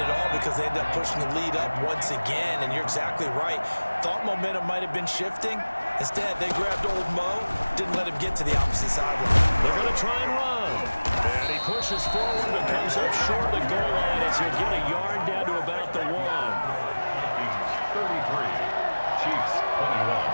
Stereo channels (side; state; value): both; inverted; correlation -1.00